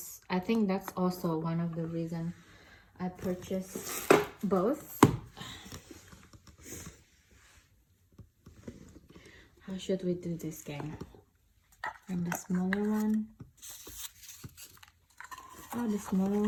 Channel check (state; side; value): identical; both; correlation 1.00